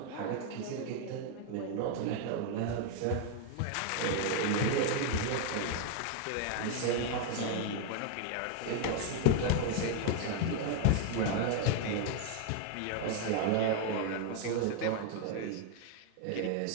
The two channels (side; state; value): both; different; correlation 0.00